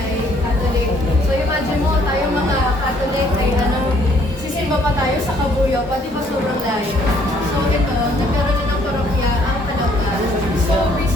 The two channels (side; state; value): both; normal; correlation 0.64